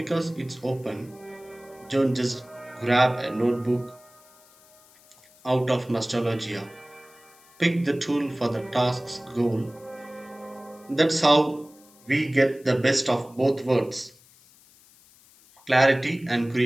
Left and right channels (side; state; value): left; noise; hiss, 27 dB below the sound